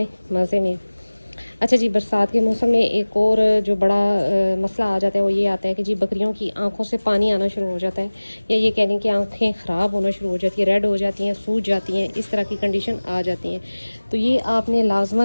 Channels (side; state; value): both; inverted; correlation -1.00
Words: मज़े में। अच्छा जी, बरसात के मौसम में एक और जो बड़ा मसला आ जाता है वो ये आता है कि जी बकरियों की आंखों से पानी आना शुरू हो जाता है, या ये कह लें कि आंखें ख़राब होना शुरू हो जाती है, रेड हो जाती हैं, सूज जाती हैं, इस तरह की कंडीशन आ जाती हैं। तो ये आपने